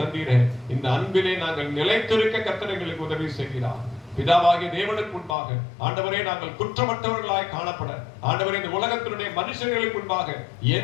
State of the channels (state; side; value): drops out; right; at 5.4 s